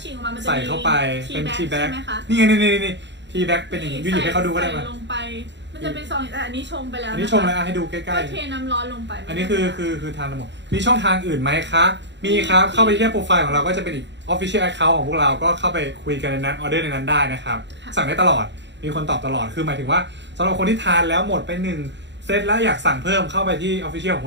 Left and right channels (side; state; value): left; late; 0.52 ms